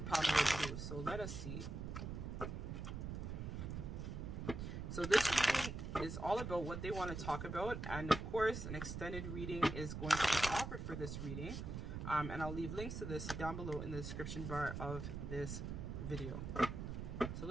pile number 2. So let us see. So this reading is all about what they want to talk about, and of course an extended reading is going to be offered for this reading, and I'll leave links to this down below in the description bar of this video. So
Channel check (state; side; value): noise; right; rumble, 5 dB below the sound